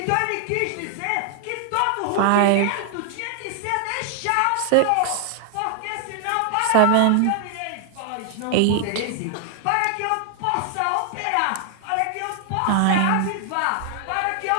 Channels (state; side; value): different; both; correlation 0.00